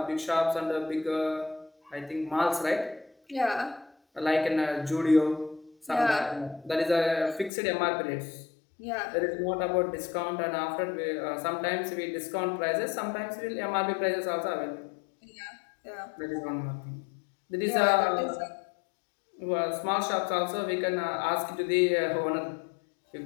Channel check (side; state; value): right; drops out; at 7.5 s